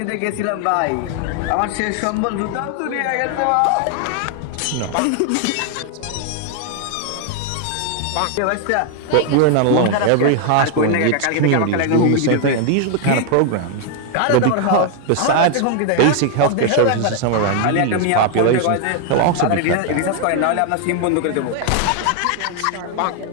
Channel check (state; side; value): different; both; correlation 0.00